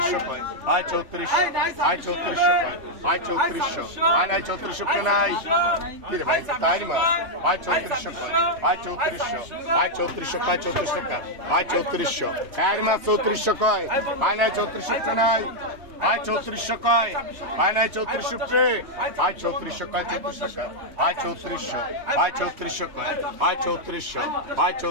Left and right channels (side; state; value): left; late; 3.0 ms